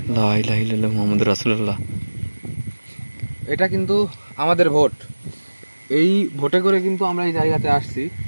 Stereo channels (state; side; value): inverted; both; correlation -1.00